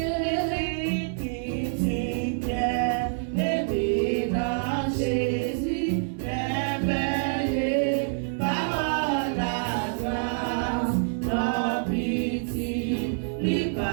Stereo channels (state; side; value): silent; left; digital silence